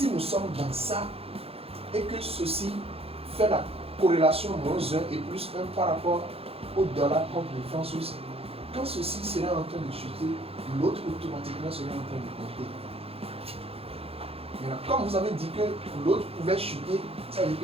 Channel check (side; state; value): left; late; 0.28 ms